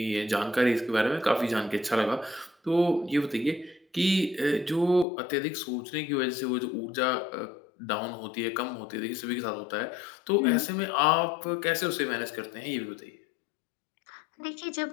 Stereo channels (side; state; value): right; drops out; at 5.1 s